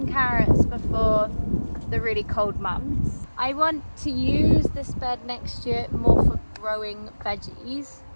carrots before the really cold months. I want to use this bed next year more for growing veggies.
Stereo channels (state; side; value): inverted; both; correlation -1.00